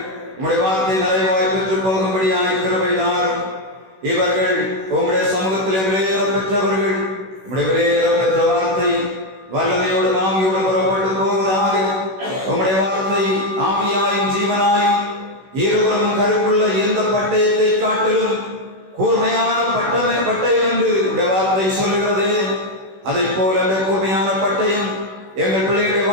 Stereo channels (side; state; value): left; late; 16 ms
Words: உம்முடைய வார்த்தை நிறைவாய் பெற்று போகும்படியாய் கிருபை தாரும். இவர்கள் உம்முடைய சமூகத்திலே விலையேற பெற்றவர்கள். உம்முடைய விலையேற பெற்ற வார்த்தை வல்லமையோடு ஆவியோடு புறப்பட்டு போவதாக. உம்முடைய வார்த்தை ஆவியாயும் ஜீவனாயும் இருவரும் கருப்புள்ள எந்த பட்டயத்தை காட்டிலும் கூர்மையான பட்டயம் என்று உடைய வார்த்தை சொல்லுகிறது. அதை போல அந்த கூர்மையான பட்டயம் எங்கள் பிள்ளைகளுடைய